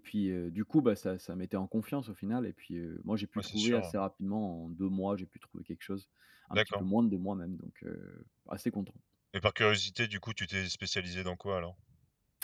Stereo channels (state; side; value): identical; both; correlation 1.00